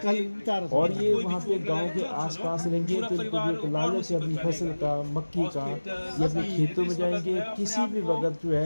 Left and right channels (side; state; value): both; inverted; correlation -1.00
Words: और ये वहाँ पे गांव के आसपास रहेंगे तो इनको भी एक लालच है अपनी फसल का, मक्की का, ये अपने खेतों में जाएंगे। किसी भी वक्त जो